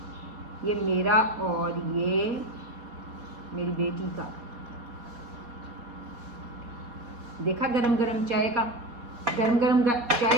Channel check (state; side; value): late; left; 4.2 ms